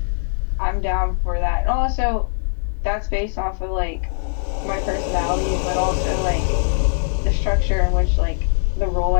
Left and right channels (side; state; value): right; silent; digital silence